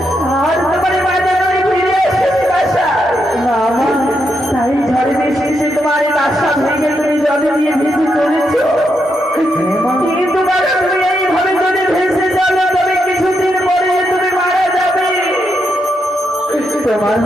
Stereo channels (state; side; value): normal; both; correlation 0.81